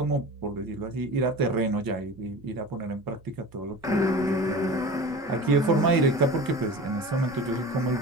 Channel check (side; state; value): both; normal; correlation 0.35